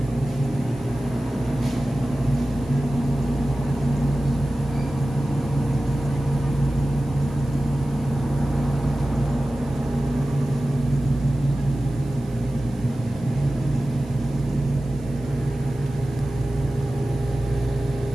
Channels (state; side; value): noise; right; hiss, 28 dB below the sound